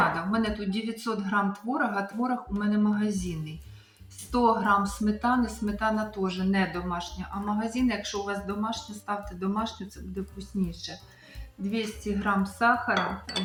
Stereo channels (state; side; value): identical; both; correlation 1.00